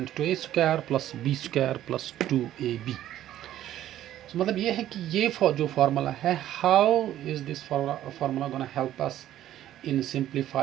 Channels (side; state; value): left; quieter; 12.6 dB